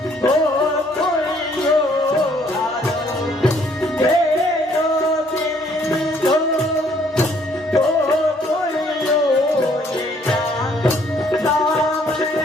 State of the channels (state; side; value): normal; both; correlation 0.64